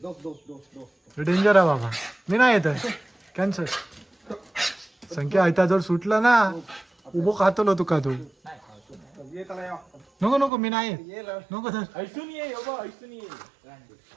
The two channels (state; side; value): drops out; left; at 10.5 s